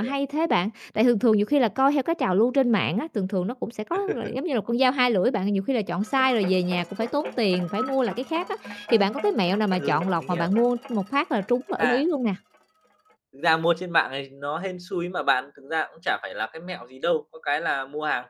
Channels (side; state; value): both; identical; correlation 1.00